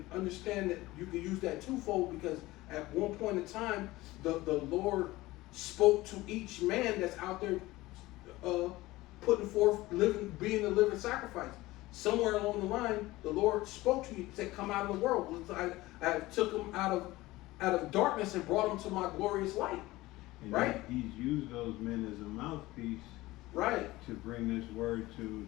understand that you can use that twofold, because at one point in time, the Lord spoke to each man that's out there, putting forth being a living sacrifice. Somewhere along the line, the Lord spoke to you, said, "Come out of the world. I took them out of darkness and brought them to my glorious light." And Right. He's used those men as a mouthpiece Right. to bring this word to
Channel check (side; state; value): right; quieter; 18.8 dB